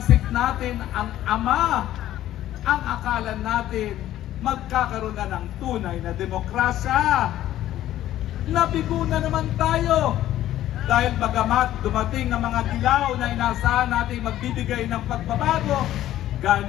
natin ang ama, ang akala natin magkakaroon na ng tunay na demokrasya. Nabigo na naman tayo dahil bagamat dumating ang mga dilaw na inaasahan natin magbibigay ng pagbabago,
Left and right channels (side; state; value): right; quieter; 13.2 dB